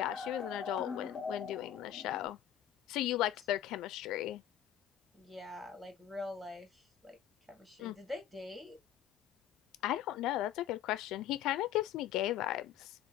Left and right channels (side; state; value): right; quieter; 11.0 dB